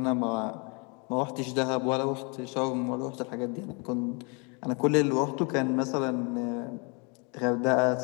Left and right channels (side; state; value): right; quieter; 32.8 dB